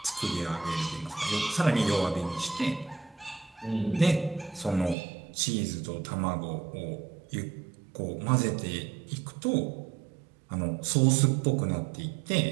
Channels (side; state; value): left; drops out; at 5.0 s